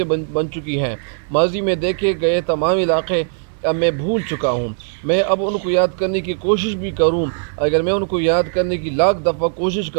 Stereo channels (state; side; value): silent; left; digital silence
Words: بن چکی ہیں۔ ماضی میں دیکھے گئے تمام علاقے اب میں بھول چکا ہوں۔ میں اب ان کو یاد کرنے کی کوشش بھی کروں، اگر میں ان کو یاد کرنے کی لاکھ دفعہ کوشش